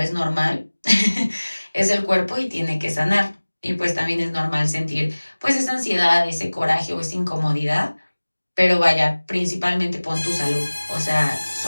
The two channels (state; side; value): inverted; both; correlation -1.00